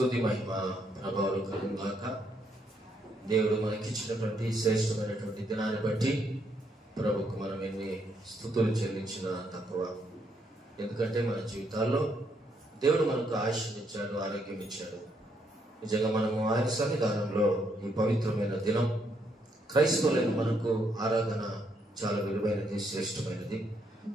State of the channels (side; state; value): both; normal; correlation 0.74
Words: మహిమ ప్రభావాలు కలుగుగాక. దేవుడు మనకిచ్చినటువంటి శ్రేష్టమైనటువంటి దినాన్ని బట్టి ప్రభుకు మనం ఎన్ని స్తుతులు చెల్లించినా తక్కువ. ఎందుకంటే మన జీవితాల్లో దేవుడు మనకు ఆయుష్ని ఇచ్చాడు, ఆరోగ్యం ఇచ్చాడు. నిజంగా మనము ఆయన సన్నిధానంలో ఈ పవిత్రమైన దినం క్రైస్తవులైన మనకు ఆరాధన చాలా విలువైనది, శ్రేష్టమైనది.